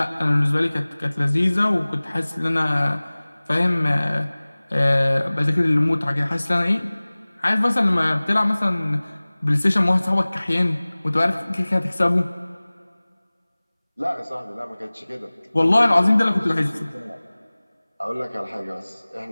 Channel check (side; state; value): both; inverted; correlation -1.00